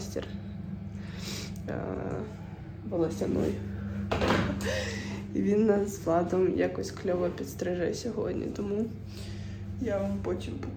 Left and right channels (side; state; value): both; identical; correlation 1.00